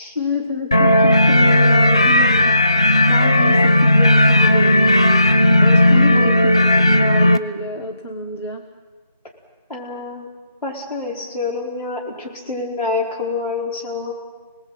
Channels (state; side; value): inverted; both; correlation -0.79